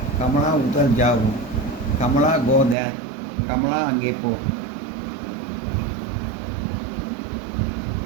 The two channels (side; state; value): left; drops out; at 2.8 s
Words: கமலா உதர் ஜாவோ, கமலா கோ தேர், கமலா அங்கே போ.